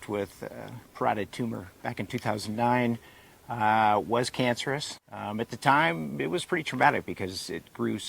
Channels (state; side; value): identical; both; correlation 1.00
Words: with parotid tumor back in 2009. Was cancerous. At the time, it was pretty traumatic because it grew